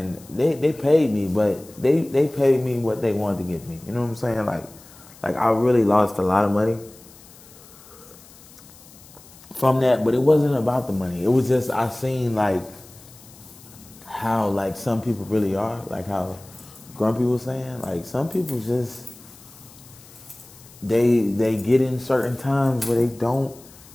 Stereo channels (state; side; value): noise; left; hiss, 22 dB below the sound